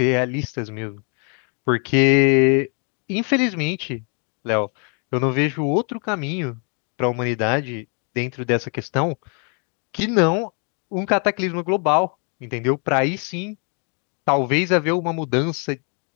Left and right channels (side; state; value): right; quieter; 39.4 dB